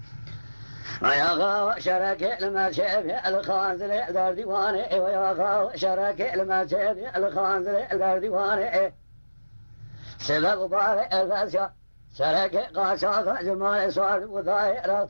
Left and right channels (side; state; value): both; inverted; correlation -1.00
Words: ويا غاو شرك المشيب الخانزل دار ديواني ويا غاو شرك المشيب الخانزل دار ديواني سبب بارئ الفاسيا شرك قاشاق جمال سوار وضاي